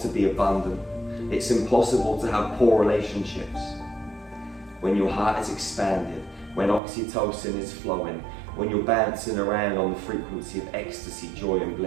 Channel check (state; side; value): drops out; left; at 6.8 s